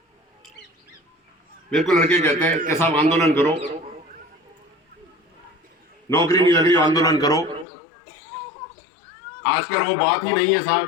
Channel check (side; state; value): right; drops out; at 7.7 s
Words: मेरे को लड़के कहते हैं कि साहब आंदोलन करो, नौकरी नहीं लग रही, आंदोलन करो। आजकल वो बात ही नहीं है